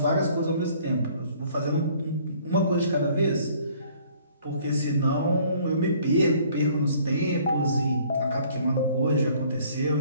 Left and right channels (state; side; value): inverted; both; correlation -0.58